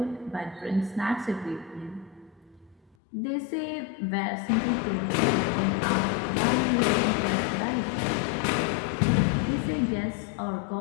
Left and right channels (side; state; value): right; drops out; at 3.0 s